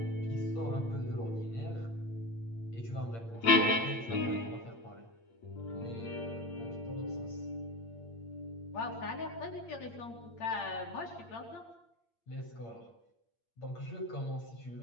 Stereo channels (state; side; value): late; right; 8.7 ms